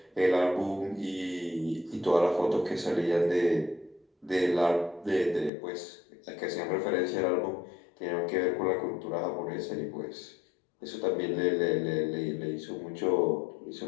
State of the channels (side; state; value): right; drops out; at 5.5 s